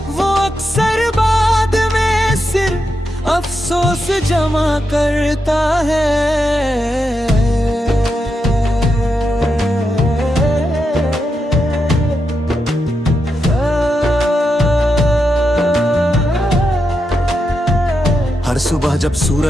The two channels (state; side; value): normal; both; correlation 0.85